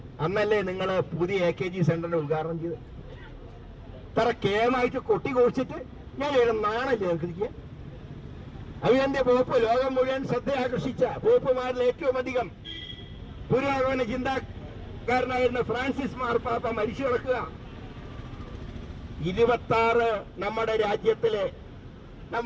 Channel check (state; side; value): identical; both; correlation 1.00